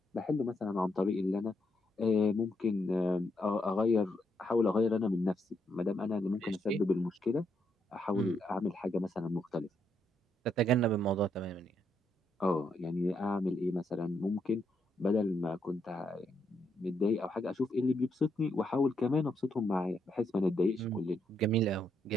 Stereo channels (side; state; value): both; normal; correlation 0.76